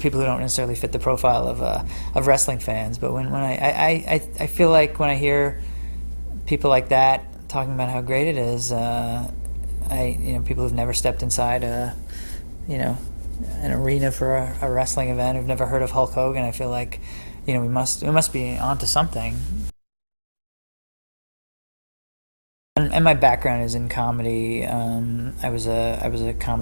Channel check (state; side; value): inverted; both; correlation -1.00